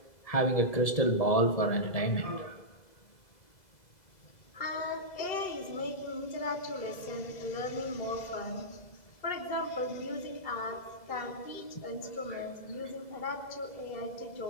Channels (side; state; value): right; late; 2.0 ms